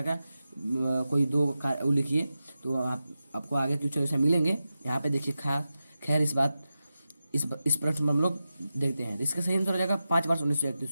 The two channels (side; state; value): both; inverted; correlation -0.92